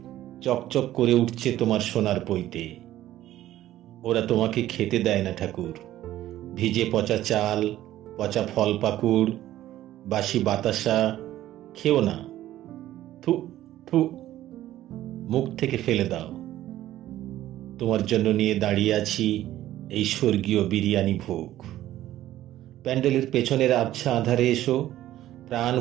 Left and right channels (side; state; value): left; quieter; 13.8 dB